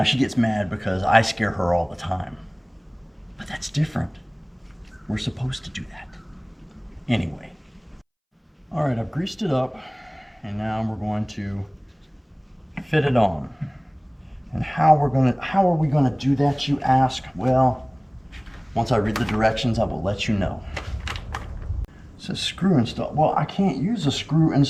she gets mad because I scare her all the time, but that's different. We're supposed to do that. Anyway. All right, I've greased it up, and now we're going to fit it on. And how are we gonna do that, you ask? Well, once I read the directions, I will let you know. It says screw install. Well, I can't use a screw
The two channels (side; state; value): both; identical; correlation 1.00